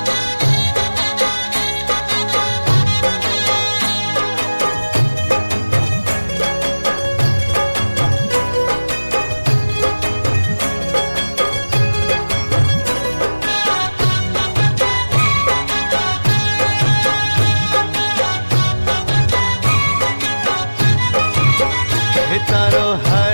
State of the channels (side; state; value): both; inverted; correlation -1.00